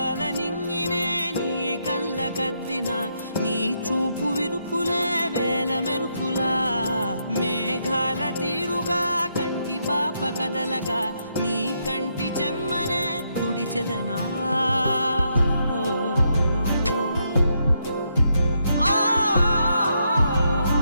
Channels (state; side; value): inverted; both; correlation -0.78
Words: నింగినే నీ కళ్ళకద్దిన నీ చూపు విరుపులే వేల మెరుపులా మేఘాల తీరుగా కంటి పాప కదలగా నీ కంటి చెమ్మనే తుడిచెదనా